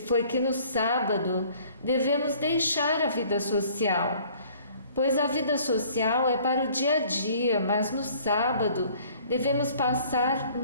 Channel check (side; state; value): both; inverted; correlation -0.55